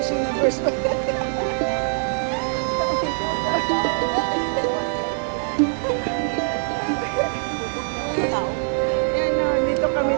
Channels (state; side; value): silent; left; 64 dB below the other